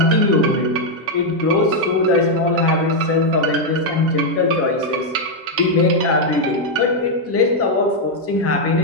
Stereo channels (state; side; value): normal; both; correlation 0.00